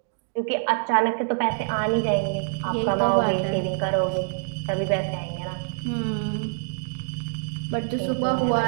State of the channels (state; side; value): silent; left; digital silence